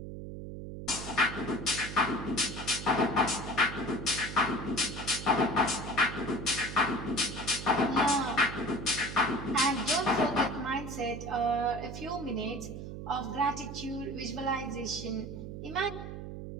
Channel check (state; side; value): noise; right; hum, 9 dB below the sound